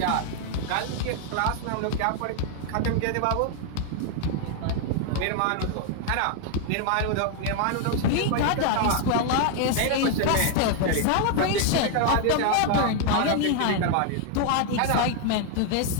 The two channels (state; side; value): different; both; correlation 0.00